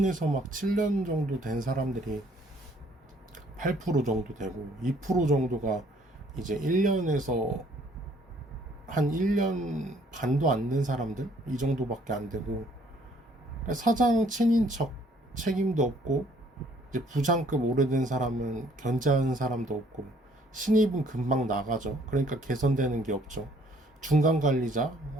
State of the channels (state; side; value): normal; both; correlation 0.61